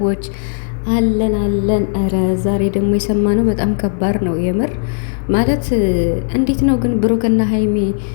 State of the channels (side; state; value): right; silent; 59 dB below the other